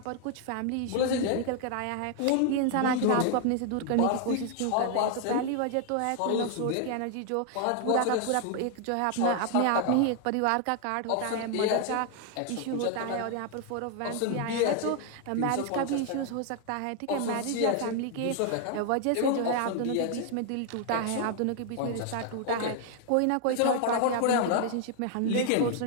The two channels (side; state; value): both; different; correlation 0.00